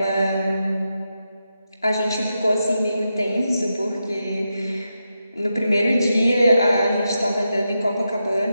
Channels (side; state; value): both; inverted; correlation -0.87